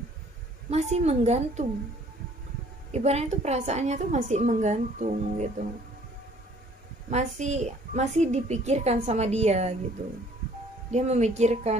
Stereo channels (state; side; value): normal; both; correlation 0.57